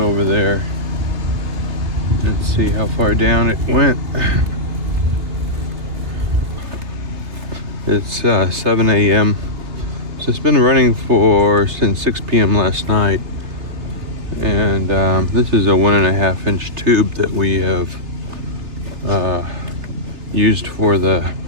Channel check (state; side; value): late; left; 3.3 ms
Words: there and see how far down it went. It's 7 a.m. So it's been running since 6 p.m. last night. And this is a 1.5 inch tube that we have used for the